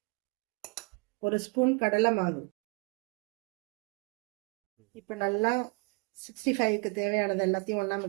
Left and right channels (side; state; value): left; quieter; 31.6 dB